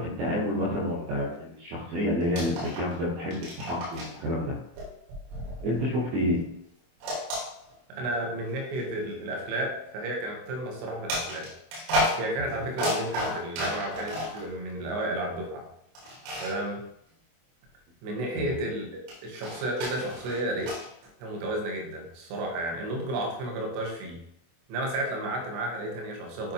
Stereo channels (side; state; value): left; late; 24 ms